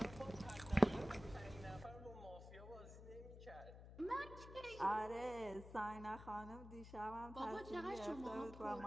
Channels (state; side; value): noise; left; hum, 13 dB below the sound